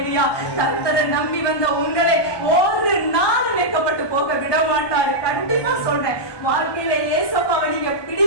கர்த்தரை நம்பி வந்த உங்களை ஒரு நாள் வெட்கப்பட்டு போக விட மாட்டாரு. கண்டிப்பா சொல்றேன், வாழ்க்கையில ஏசப்பாவை நீங்க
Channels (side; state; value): right; late; 1.2 ms